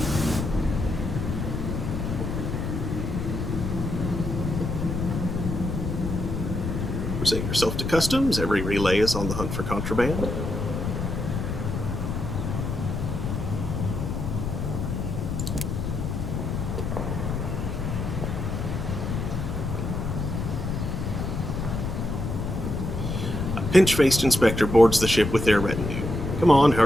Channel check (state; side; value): noise; left; rumble, 3 dB below the sound